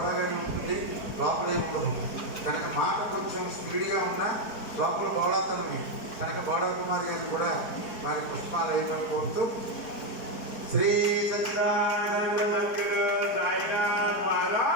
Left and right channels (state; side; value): late; right; 4.6 ms